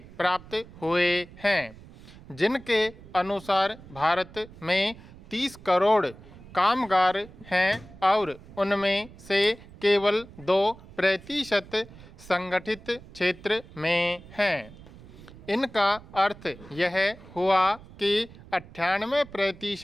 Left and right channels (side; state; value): right; noise; rumble, 19 dB below the sound